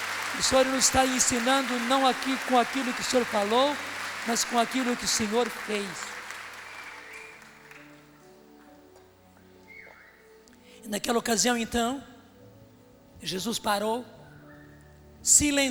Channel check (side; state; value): both; identical; correlation 1.00